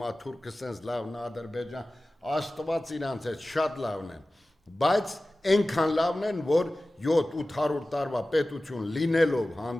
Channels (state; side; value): normal; both; correlation 0.96